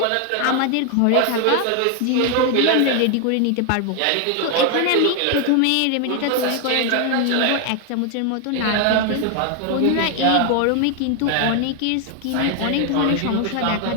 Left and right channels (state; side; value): different; both; correlation 0.01